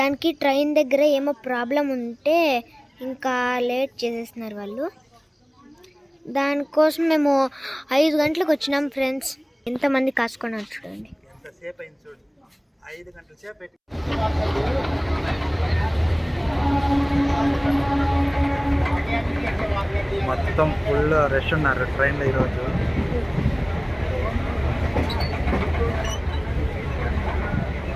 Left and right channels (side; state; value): both; identical; correlation 1.00